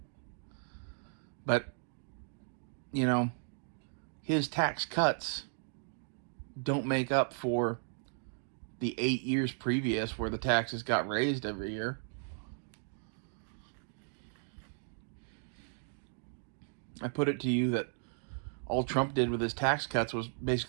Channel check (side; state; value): left; silent; digital silence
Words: But, you know, his tax cuts don't make up for the 8 years previous where the taxes got raised every year. I put it to you that all Trump did with his tax cuts was